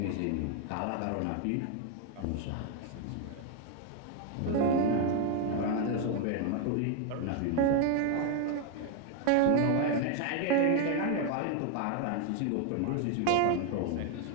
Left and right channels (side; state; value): both; different; correlation 0.01